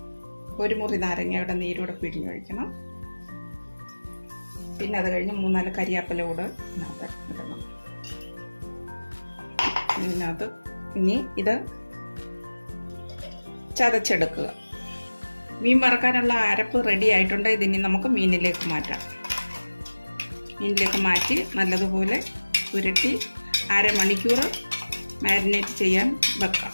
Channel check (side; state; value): both; inverted; correlation -1.00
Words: ഒരു മുറി നാരങ്ങയുടെ നീരൂടെ പിഴിഞ്ഞൊഴിക്കണം. പിന്നെ അത് കഴിഞ്ഞ് 3-4 കരിയാപ്പില കൂടെ ഇതിനകത്ത് ഇടണം. ഇതിനകത്ത് ഇനി ഇത് ചതച്ചെടുക്കുക. മീൻ വറക്കാനുള്ള അരപ്പ് റെഡി ആയിട്ടുണ്ട്. ഇതിനി നമുക്ക് മീനിലേക്ക് മാറ്റാം. മീനിലേക്ക് മാറ്റി നല്ലതുപോലെ പുരട്ടി അരമണിക്കൂർ മാരിനേറ്റ് ചെയ്യാൻ വെക്കാം.